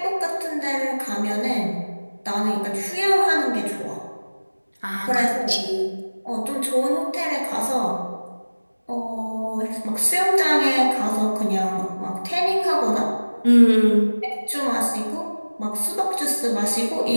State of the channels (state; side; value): inverted; both; correlation -1.00